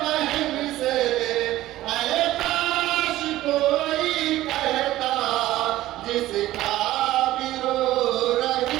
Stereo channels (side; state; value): left; quieter; 15.4 dB